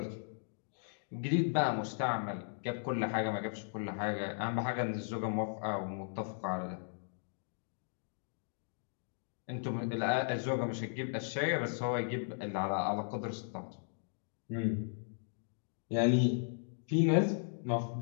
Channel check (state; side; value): silent; right; digital silence